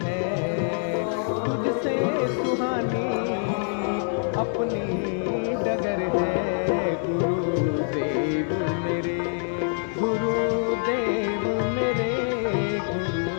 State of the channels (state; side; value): silent; right; 61 dB below the other